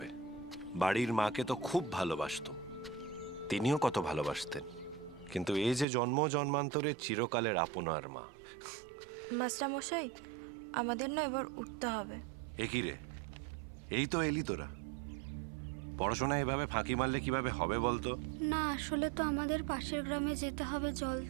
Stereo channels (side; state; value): left; drops out; at 5.9 s